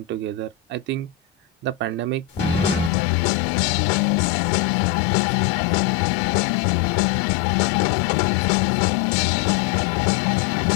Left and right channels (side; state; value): right; drops out; at 2.9 s